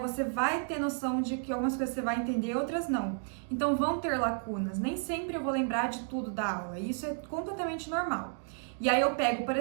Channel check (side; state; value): left; silent; 56 dB below the other